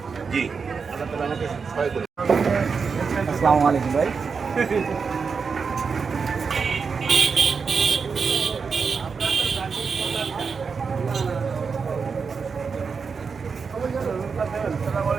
জি, আল্লাহ তাআলা আমাকে সহায় করুন। আসসালামু আলাইকুম ভাই। আসসালামু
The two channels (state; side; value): quieter; left; 5.4 dB